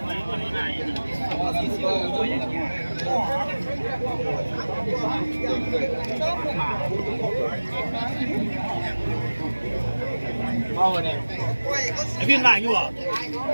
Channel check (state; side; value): inverted; both; correlation -1.00